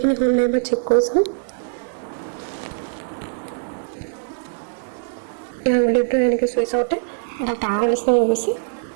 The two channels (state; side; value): silent; left; digital silence